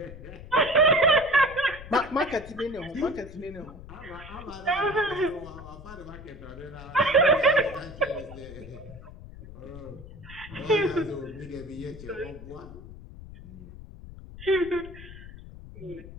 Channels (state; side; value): noise; left; rumble, 15 dB below the sound